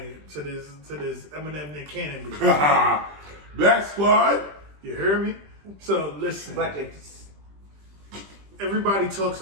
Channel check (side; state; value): left; late; 20 ms